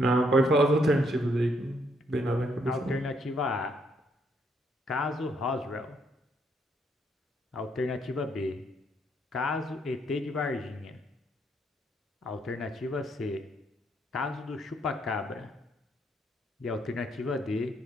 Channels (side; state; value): both; normal; correlation 0.72